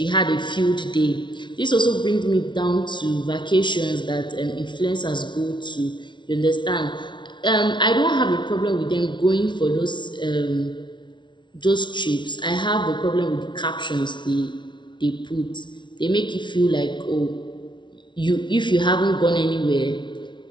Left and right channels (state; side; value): late; right; 0.23 ms